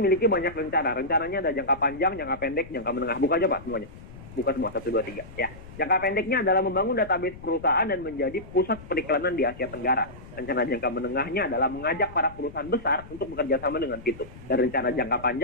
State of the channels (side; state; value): left; noise; rumble, 17 dB below the sound